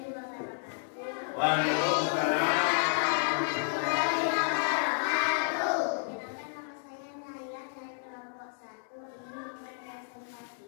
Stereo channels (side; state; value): right; silent; digital silence